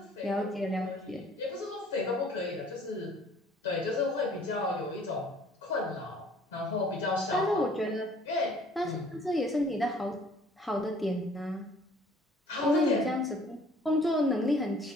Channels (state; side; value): normal; both; correlation 0.54